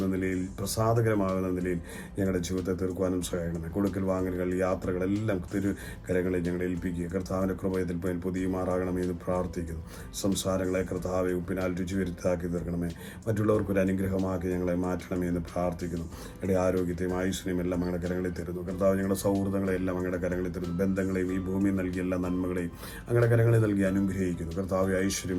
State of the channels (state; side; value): identical; both; correlation 1.00